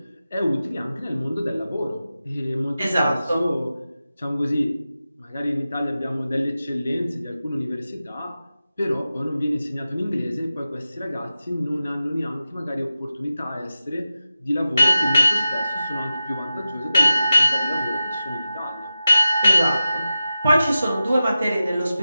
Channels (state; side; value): inverted; both; correlation -0.94